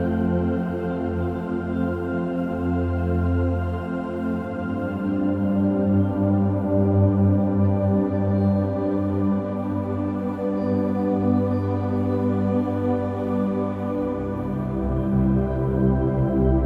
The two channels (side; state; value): both; identical; correlation 1.00